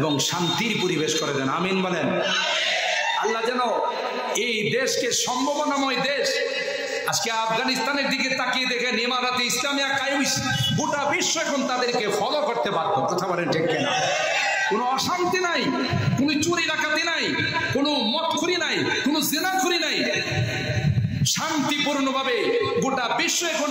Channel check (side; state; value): both; identical; correlation 1.00